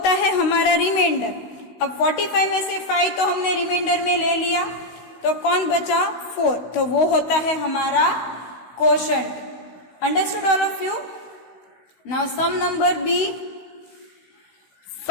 है हमारा रिमाइंडर. अब 45 में से 5 तो हमने रिमाइंडर में ले लिया, तो कौन बचा? 4. तो वो होता है हमारा quotient. Understood all of you? Now sum number B,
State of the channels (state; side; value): late; right; 16 ms